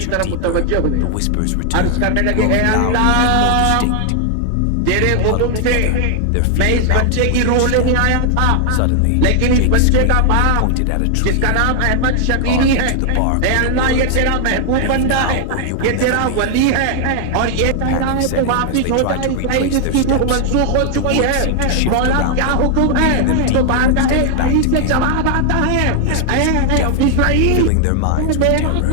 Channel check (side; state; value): both; different; correlation 0.00